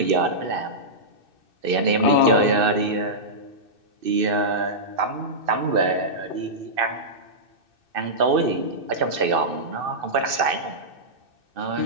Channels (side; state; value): left; late; 2.6 ms